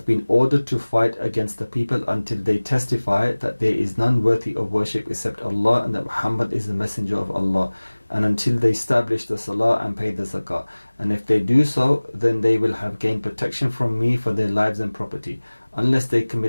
been ordered to fight against the people until they testify that there is none worthy of worship except Allah and that Muhammad is the Messenger of Allah, and until they establish the Salah and pay the Zakah. And if they do so, then they will have gained protection from me for their lives and property, unless they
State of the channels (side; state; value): both; inverted; correlation -1.00